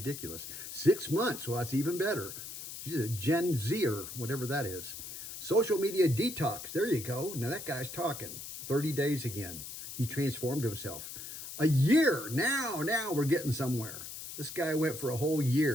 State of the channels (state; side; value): noise; left; hiss, 10 dB below the sound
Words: 6 months. Well, that's even better. She's a Gen Zer, whatever that is. Social media detox. There you go. Now that guy's talking. 30 days again. He transformed himself. A year. Now we're getting somewhere. This guy went for a whole